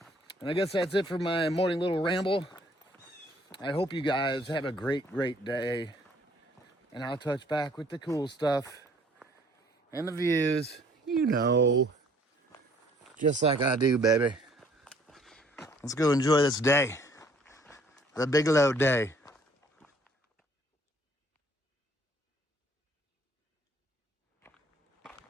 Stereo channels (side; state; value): both; normal; correlation 0.60